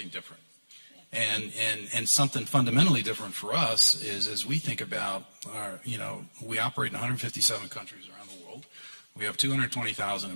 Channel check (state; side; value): inverted; both; correlation -1.00